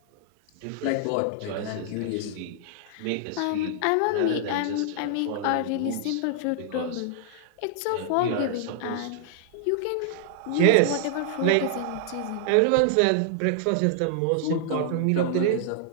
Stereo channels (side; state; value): both; different; correlation -0.01